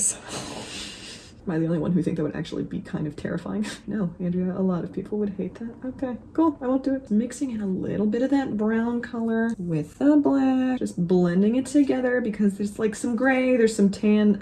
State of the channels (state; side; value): identical; both; correlation 1.00